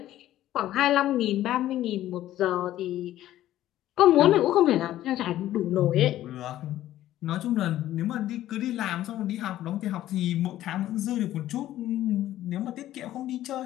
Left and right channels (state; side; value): quieter; right; 13.5 dB